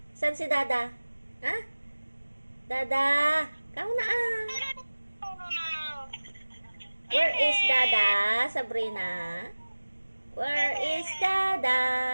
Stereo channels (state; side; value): inverted; both; correlation -1.00